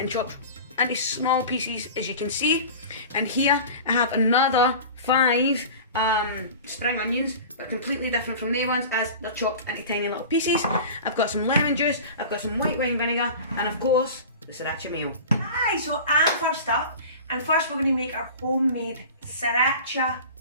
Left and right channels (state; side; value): inverted; both; correlation -0.36